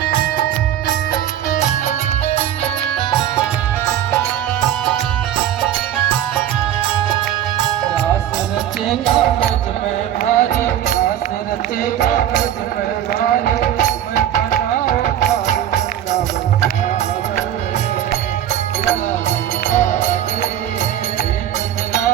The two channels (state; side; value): quieter; left; 11.0 dB